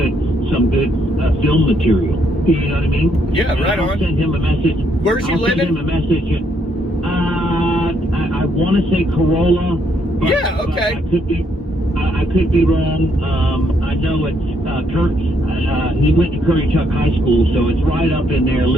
some good film material. You know what I mean? Yeah, and right I'll on. send him a message. Where's he living? Send him a message. I want to say Corolla. But, yeah, okay. I could be wrong. I know it's Kurt. He went to Curry Chuck High School, so it's right up in there,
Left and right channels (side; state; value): both; normal; correlation 0.72